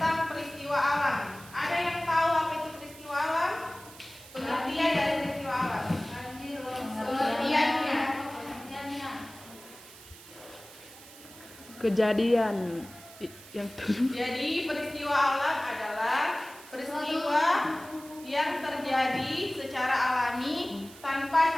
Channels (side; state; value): right; noise; hiss, 19 dB below the sound